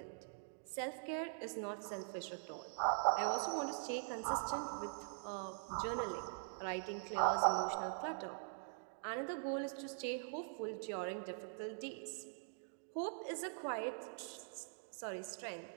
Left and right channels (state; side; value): silent; left; digital silence